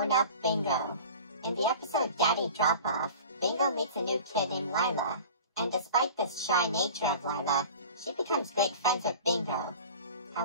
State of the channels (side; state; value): both; inverted; correlation -0.39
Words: Bingo. In the episode Daddy Drop-Off, Bingo meets a new kid named Lila, and despite the shy nature of Lila, she becomes great friends with Bingo.